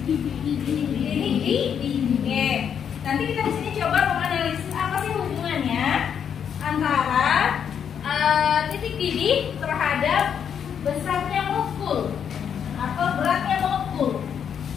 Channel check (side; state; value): right; quieter; 8.0 dB